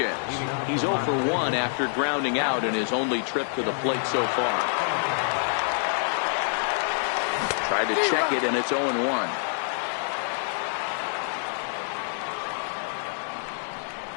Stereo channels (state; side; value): silent; right; digital silence